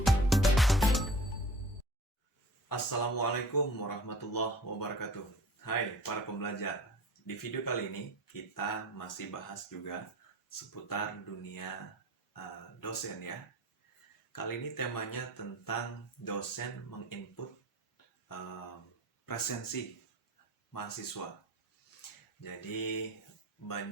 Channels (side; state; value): both; normal; correlation 0.42